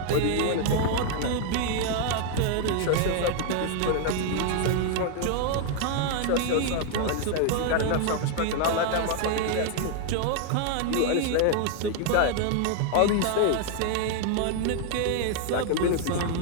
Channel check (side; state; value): both; different; correlation 0.00